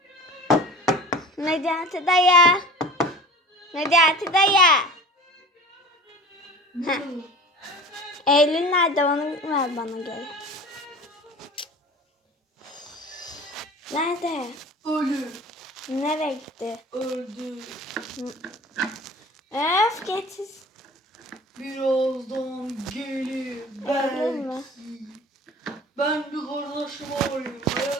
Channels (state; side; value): normal; both; correlation 0.40